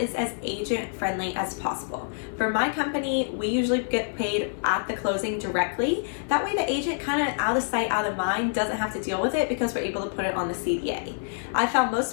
is as agent friendly as possible. For my company, we usually get paid at the closing directly. That way the agent kind of out of sight, out of mind doesn't have to deal with it because we're able to put it on the CDA. I found most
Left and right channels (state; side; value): silent; right; 58 dB below the other